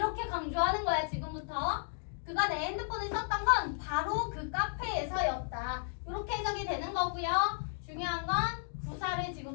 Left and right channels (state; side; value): silent; right; digital silence